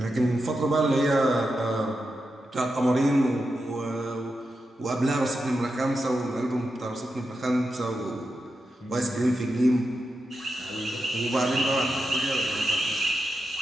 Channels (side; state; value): both; normal; correlation 0.88